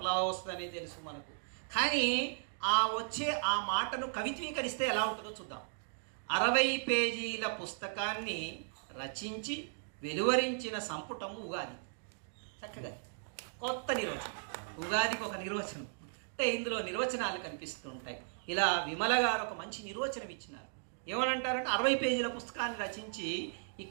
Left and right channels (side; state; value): left; silent; digital silence